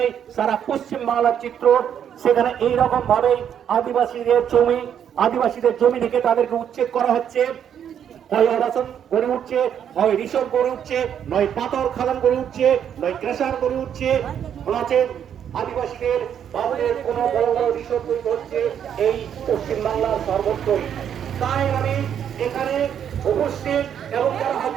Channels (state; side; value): quieter; left; 9.0 dB